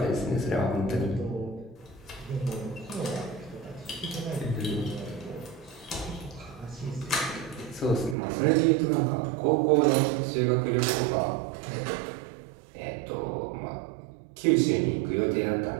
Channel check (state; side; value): drops out; left; at 8.2 s